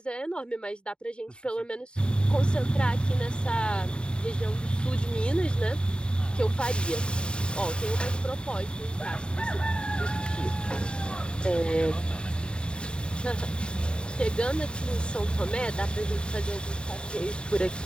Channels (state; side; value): late; right; 0.051 ms